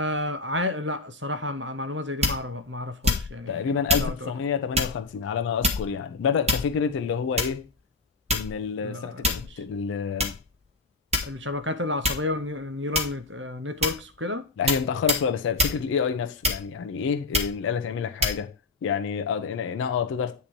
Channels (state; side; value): quieter; right; 3.4 dB